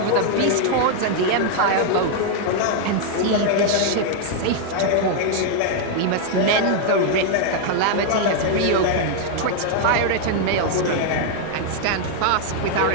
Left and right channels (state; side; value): different; both; correlation 0.00